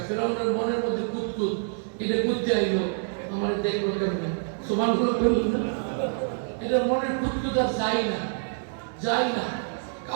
ফেরাউনের মনের মধ্যে কুতকুত, এটা করতে আইলো, আমার দেখলো কেমন সুবহানাল্লাহ বলল না, এটা মনের কুতকুত আর যায় না, যায় না,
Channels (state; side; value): silent; left; digital silence